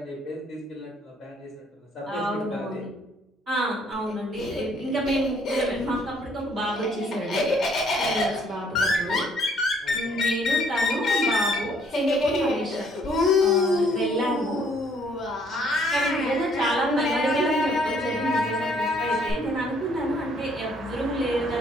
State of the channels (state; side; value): normal; both; correlation 0.64